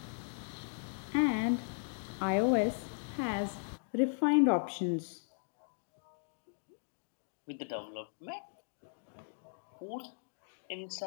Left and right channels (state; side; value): silent; right; digital silence